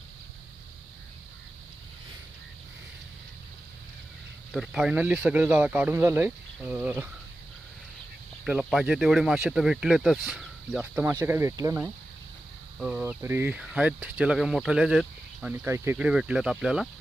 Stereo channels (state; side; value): normal; both; correlation 0.93